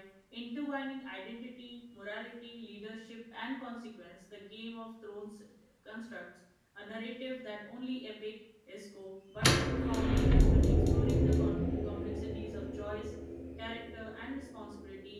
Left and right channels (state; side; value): identical; both; correlation 1.00